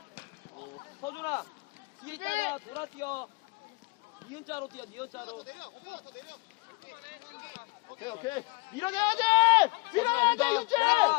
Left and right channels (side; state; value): right; quieter; 26.3 dB